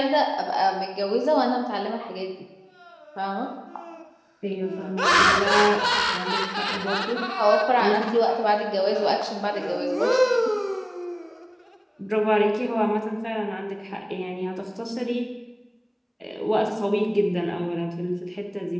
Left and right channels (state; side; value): identical; both; correlation 1.00